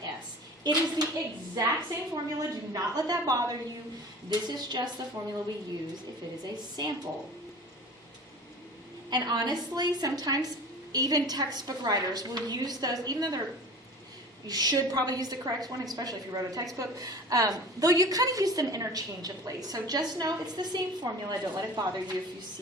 s. It is the exact same formula. Do not let that bother you. This is just the formula we use if it is a sample. And honestly, sometimes even textbook writers will use those, even though you should probably use the correct one, especially if you wrote a textbook, though you kind of use them interchangeably. So just know it's the same formula. Don't let it bother you if you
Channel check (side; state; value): both; normal; correlation 0.39